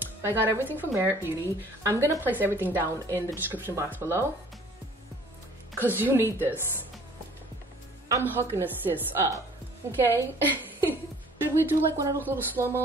I got everything from Merit Beauty. I'm gonna place everything down in the description box below, cause you need this. I'm hooking a sis up, okay? Should we do like one of those little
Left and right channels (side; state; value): both; normal; correlation 0.53